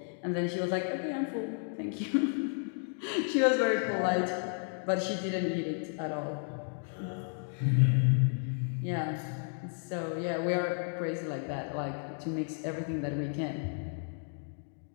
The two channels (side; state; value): right; silent; 56 dB below the other